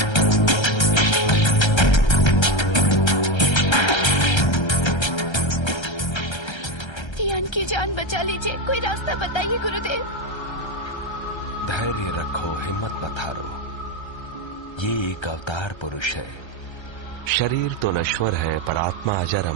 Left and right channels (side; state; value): right; late; 1.3 ms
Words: की जान बचा लीजिए, कोई रास्ता बताइए गुरुदेव। धैर्य रखो, हिम्मत मत हारो। ये एक अवतार पुरुष है। शरीर तो नश्वर है पर आत्मा अजर